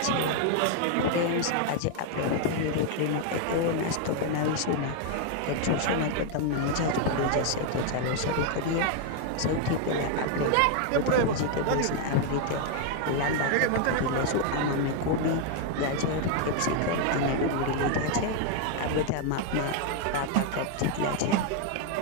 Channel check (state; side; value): different; both; correlation 0.00